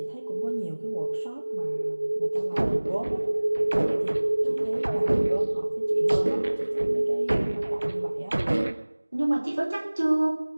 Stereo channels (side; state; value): both; inverted; correlation -1.00